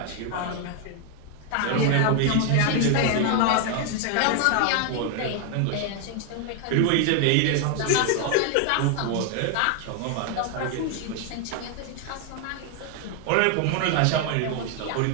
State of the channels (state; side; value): different; both; correlation 0.01